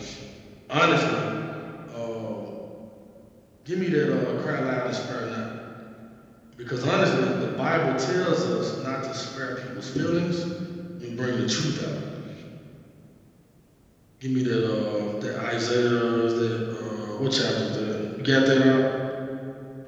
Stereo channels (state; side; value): identical; both; correlation 1.00